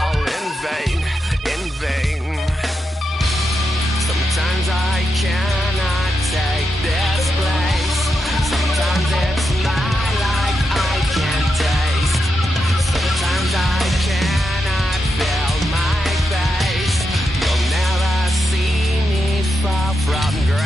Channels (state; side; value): normal; both; correlation 0.86